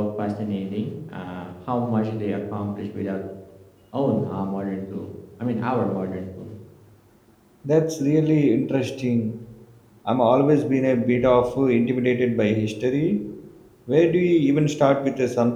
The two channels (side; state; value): both; identical; correlation 1.00